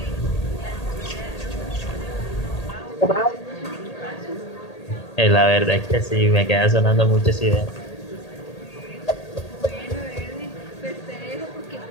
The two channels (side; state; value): right; late; 1.8 ms